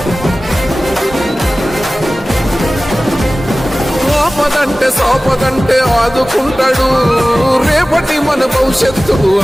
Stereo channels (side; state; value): both; normal; correlation 0.97